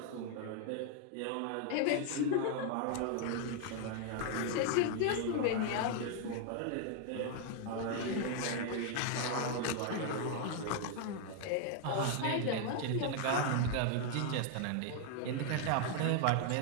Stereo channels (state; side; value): different; both; correlation 0.00